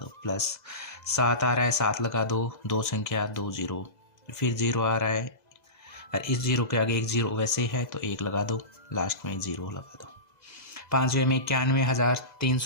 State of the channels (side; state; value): right; late; 2.0 ms